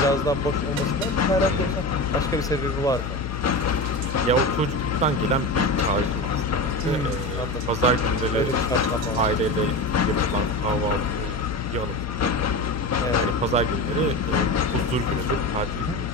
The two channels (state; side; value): noise; left; hum, 7 dB below the sound